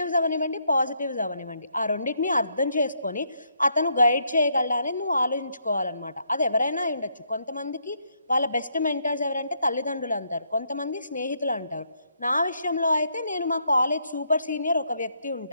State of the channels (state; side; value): inverted; both; correlation -0.74